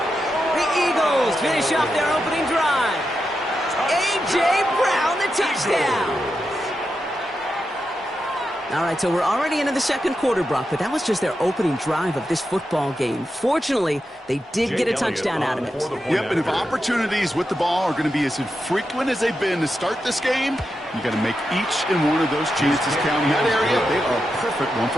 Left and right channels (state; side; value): normal; both; correlation 0.87